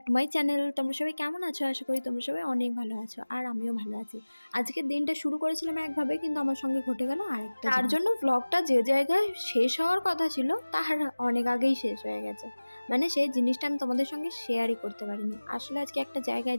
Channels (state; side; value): inverted; both; correlation -1.00